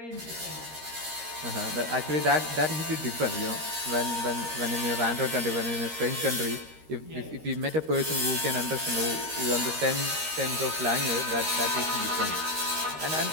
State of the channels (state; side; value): late; left; 13 ms